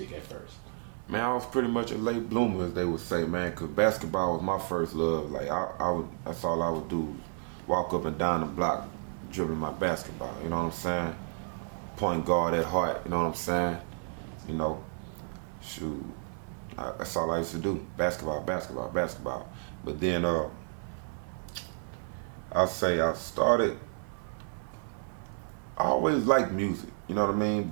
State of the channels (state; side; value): silent; left; 57 dB below the other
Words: at first? Man, I was pretty much a late bloomer, as they would say, man, because basketball was my first love. Like, that's all I would do, walk up and down the block, dribbling my basketball, you know what I'm saying? Point guard at heart, you know what I'm saying? You know, shoot, that's all I used to do, basketball. But then, I'll say I always liked music, you know what I mean?